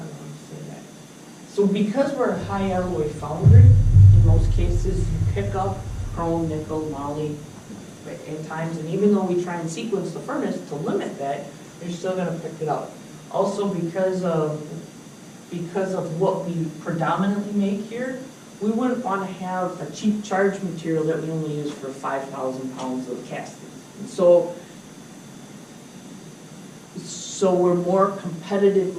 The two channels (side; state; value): both; identical; correlation 1.00